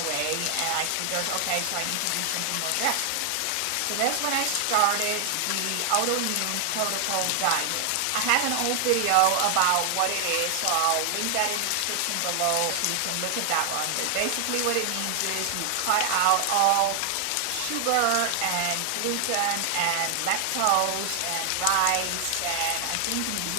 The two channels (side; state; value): both; different; correlation 0.00